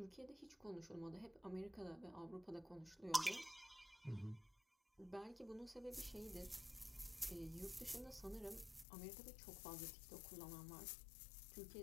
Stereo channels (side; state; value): right; drops out; at 8.8 s